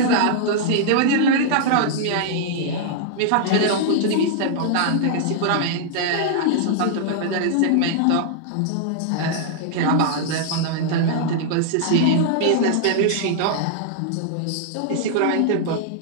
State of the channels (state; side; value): different; both; correlation -0.01